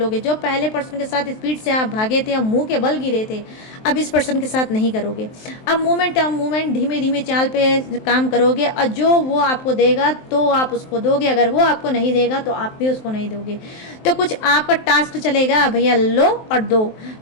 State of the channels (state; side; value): late; right; 23 ms